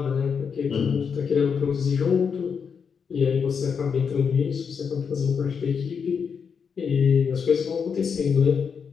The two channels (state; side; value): quieter; right; 6.4 dB